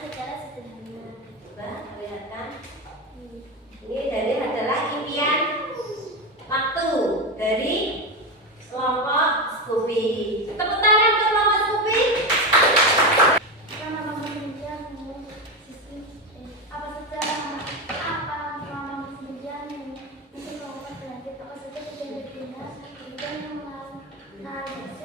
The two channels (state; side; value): normal; both; correlation 0.16